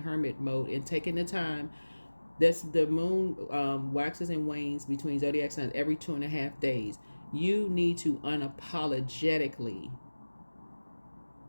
mode and taking the time. That's the moon waxes and wanes between zodiac signs every 2.5 days. You need to unapologetically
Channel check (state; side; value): inverted; both; correlation -1.00